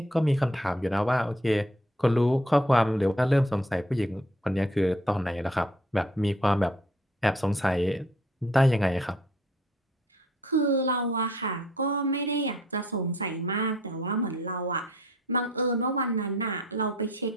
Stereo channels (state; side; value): normal; both; correlation 0.59